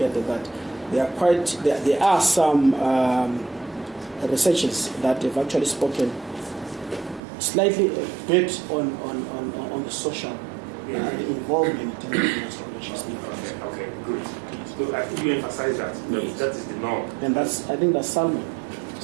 that there are some researchers that have actually spoken slightly a bit on the social involvement in terms of industrial relations theory. Okay, good. Yes. So I think you emphasize that. Yes. That is the norm. And I think that's Salmon.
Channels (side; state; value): left; drops out; at 7.2 s